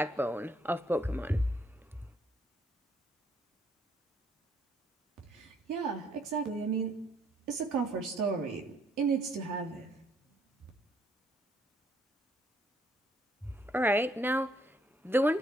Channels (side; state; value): both; normal; correlation 0.67